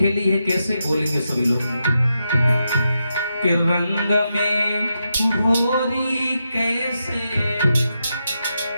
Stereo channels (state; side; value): inverted; both; correlation -0.86